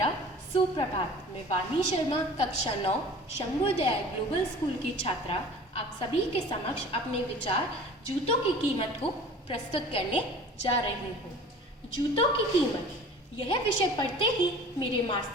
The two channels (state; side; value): normal; both; correlation 0.43